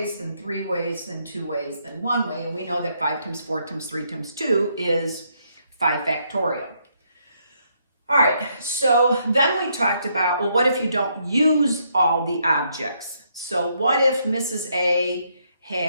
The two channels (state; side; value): inverted; both; correlation -0.74